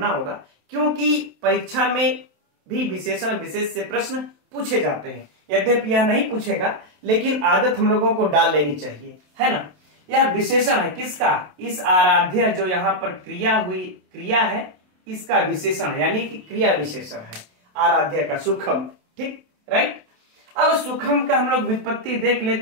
होगा, क्योंकि परीक्षा में भी विशेषण विशेष से प्रश्न पूछे जाते हैं। यद्यपि यह नहीं पूछेगा, लेकिन आदत हम लोगों को डाल लेनी चाहिए, है ना। यह विशेषण है किसका, इस आराध्य जो यहाँ पर क्रिया है, इसका विशेषण है, यानी कि क्रिया विशेषण है आराध्य का, सुखम। ठीक, राइट। अब सुखम का हम लोग व्युत्पत्ति देख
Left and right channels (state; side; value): late; left; 27 ms